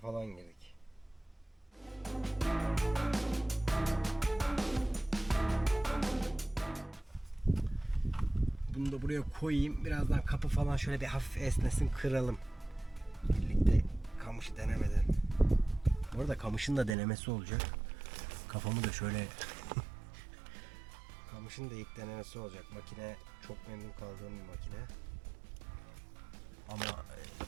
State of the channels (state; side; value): drops out; left; at 16.9 s